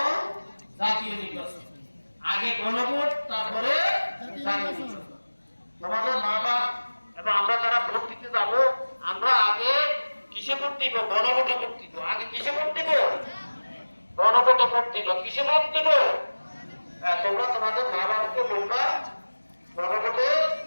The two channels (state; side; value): inverted; both; correlation -1.00